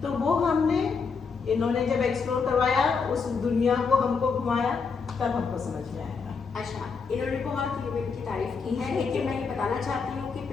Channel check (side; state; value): right; quieter; 5.3 dB